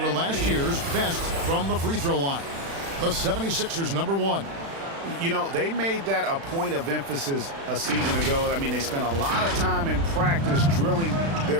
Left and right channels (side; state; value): left; late; 36 ms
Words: were last year's best from the free throw line. The 76ers, number one. You know, they made that a point of emphasis a season ago. I mean, they spent a lot of time in practice drilling